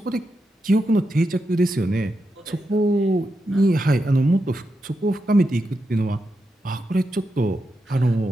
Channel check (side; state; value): both; normal; correlation 0.86